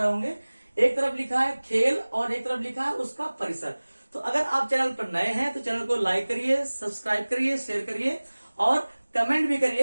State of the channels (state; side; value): inverted; both; correlation -1.00